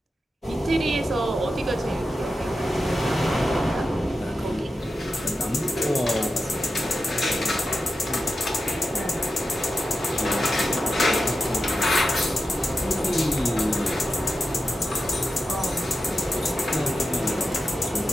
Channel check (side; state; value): both; normal; correlation 0.91